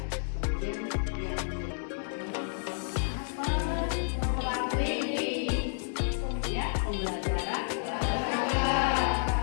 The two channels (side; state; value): right; silent; digital silence